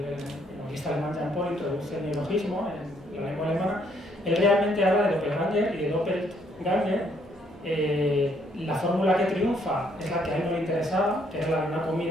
novelista alemán Jean Paul introduce el neologismo en la lengua alemana, él realmente habla de doppelganger y de doppelganger. La fórmula que triunfa es la que a él no le interesaba, que es la de una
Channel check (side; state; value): both; normal; correlation 0.68